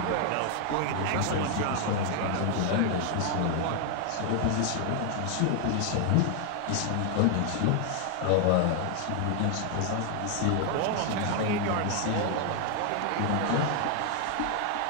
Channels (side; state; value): both; different; correlation 0.00